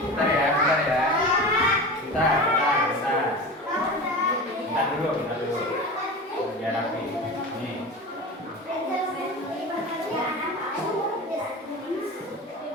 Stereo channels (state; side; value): normal; both; correlation 0.30